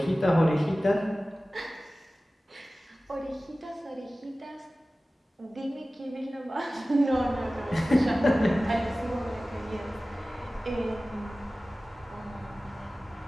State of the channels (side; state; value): both; normal; correlation 0.97